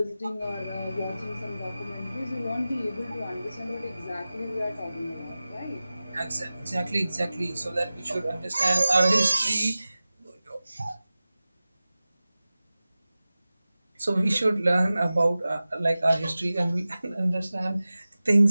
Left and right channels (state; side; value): inverted; both; correlation -0.96